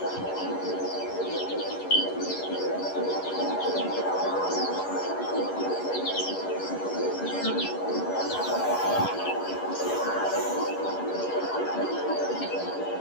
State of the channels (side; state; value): right; late; 11 ms